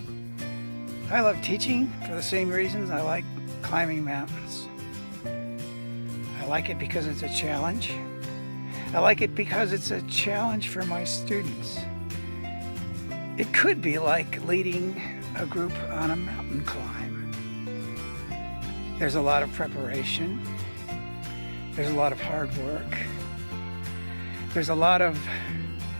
I love teaching for the same reasons I like climbing mountains. I like it because it's a challenge. I like it because it's a challenge for my students. It could be like leading a group on a mountain climb. There's a lot of preparation. There's a lot of hard work. There's a lot of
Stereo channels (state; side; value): inverted; both; correlation -1.00